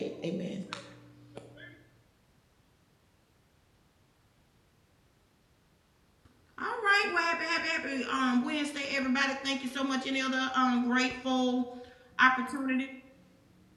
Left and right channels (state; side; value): identical; both; correlation 1.00